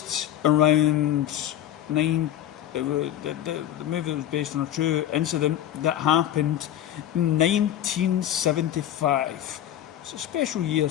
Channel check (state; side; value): quieter; right; 11.6 dB